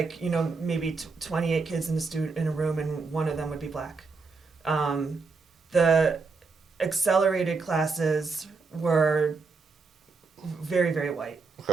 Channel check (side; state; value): left; quieter; 4.4 dB